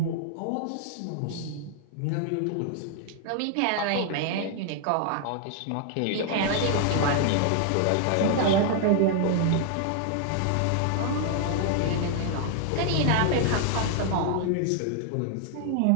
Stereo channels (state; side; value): different; both; correlation 0.00